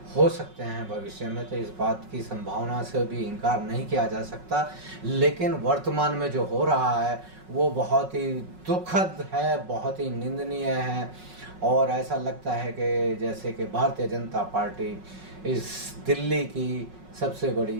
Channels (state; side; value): late; left; 5.4 ms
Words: हो सकते हैं भविष्य में। तो इस बात की संभावना से भी इनकार नहीं किया जा सकता। लेकिन वर्तमान में जो हो रहा है वो बहुत ही दुखद है, बहुत ही निंदनीय है और ऐसा लगता है कि जैसे कि भारतीय जनता पार्टी इस दिल्ली की सबसे बड़ी